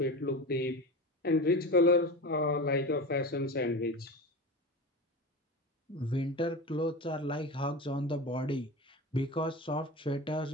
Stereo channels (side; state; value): both; normal; correlation 0.27